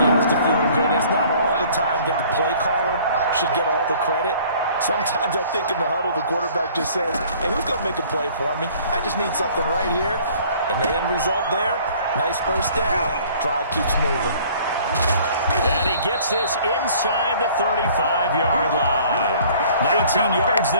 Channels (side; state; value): both; inverted; correlation -0.53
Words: has to feel good. It's not all the time that the play caller should get all the credit. Sometimes I think in the huddle, the quarterback just says, hey, who's going to make a play for me? I just need something right here. And the end result there, nice first down. Drive keeps moving. And he gets this inside the 35-yard line. 19 yards